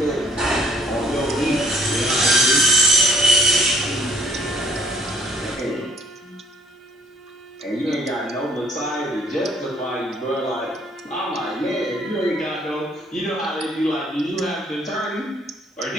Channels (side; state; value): both; normal; correlation 0.61